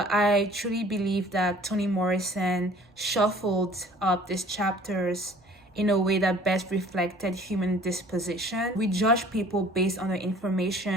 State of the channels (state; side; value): normal; both; correlation 0.51